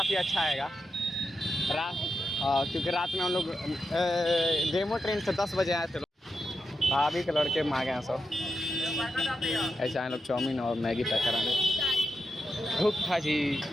अच्छा आएगा रात, क्योंकि रात में हम लोग डेमो ट्रेन से 10 बजे आए थे। भाभी के लड़के मांगे हैं सब, ऐसे आए लोग चाउमीन और मैगी पैक कराने। भूख था जी।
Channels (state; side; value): normal; both; correlation 0.87